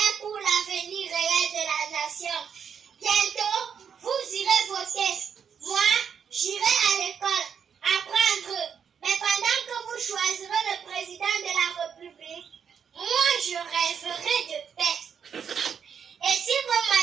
pour l'avenir réel de la nation. Bientôt, vous irez voter. Moi, j'irai à l'école, apprendre. Mais pendant que vous choisirez le président de la République, moi, je rêverai de paix. Et si vos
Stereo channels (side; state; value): left; quieter; 7.3 dB